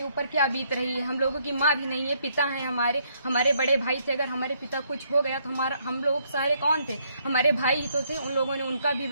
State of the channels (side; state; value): both; inverted; correlation -0.70